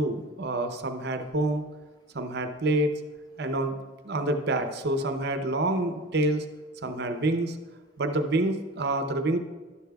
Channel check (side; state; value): both; normal; correlation 0.34